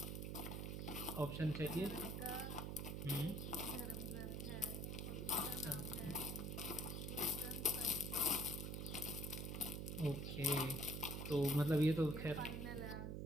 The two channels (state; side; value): noise; right; hum, 3 dB below the sound